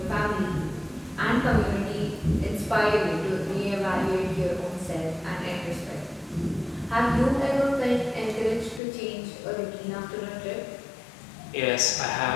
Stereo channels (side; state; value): right; drops out; at 8.8 s